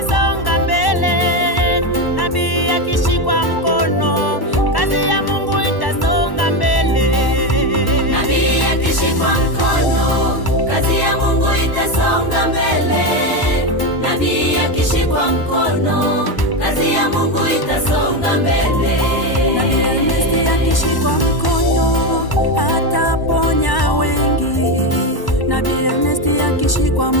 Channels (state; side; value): late; right; 1.1 ms